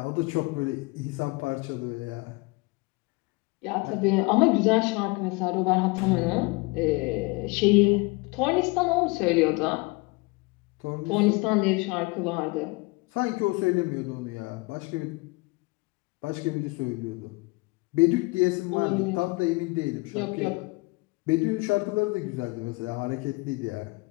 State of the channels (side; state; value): right; quieter; 26.1 dB